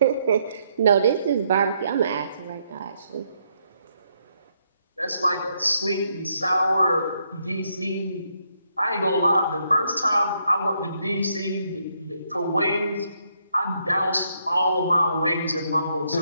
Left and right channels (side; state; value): both; inverted; correlation -0.75